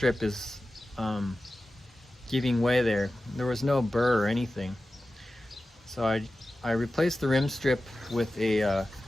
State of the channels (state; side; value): normal; both; correlation 0.94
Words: is giving way there. There was no burr or anything. So I replaced the rim strip with a